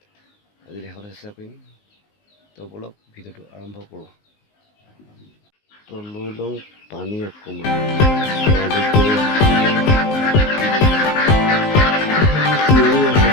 আজি দেখাবলৈ চেষ্টা কৰিম। তো বলক ভিডিঅ'টো আৰম্ভ কৰোঁ। তো লৈ লওঁ পানী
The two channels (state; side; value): late; right; 19 ms